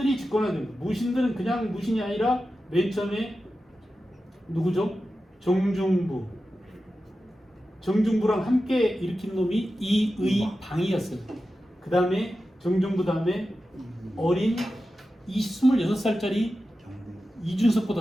집권하게 됩니다. 무신들은 그냥 무신이 아니라 맨 처음에 누구죠? 정중부. 정중부랑 함께 일으킨 놈이 이의방이었어요. 그 다음에 정중부 다음에 어린 26살짜리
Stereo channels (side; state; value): both; normal; correlation 0.92